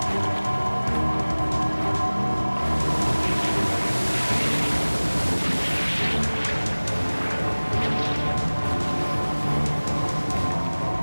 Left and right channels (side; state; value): both; inverted; correlation -1.00